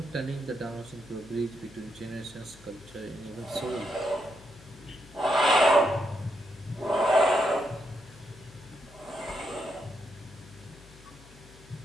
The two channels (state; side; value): noise; left; hum, 22 dB below the sound